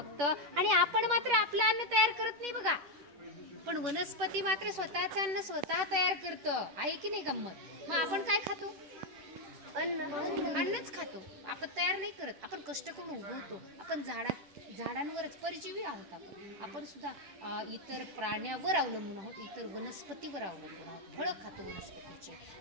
आणि आपण मात्र आपलं अन्न तयार करत नाही बघा. पण वनस्पती मात्र स्वतःचं अन्न स्वतः तयार करतं, आहे की नाही गंमत? मग आपण काय खातो? अन्नच खातो. आपण तयार नाही करत, आपण कष्ट करून उगवतो. आपण झाडांवरच परजीवी आहोत. आपण सुद्धा इतर प्राण्यावर अवलंबून आहोत, इतर वनस्पतीवर अवलंबून आहोत. फळं खातो वनस्पतीचे,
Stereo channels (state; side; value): late; left; 10 ms